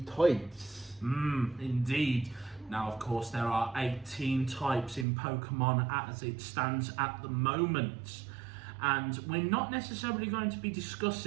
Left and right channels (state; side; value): drops out; left; at 5.1 s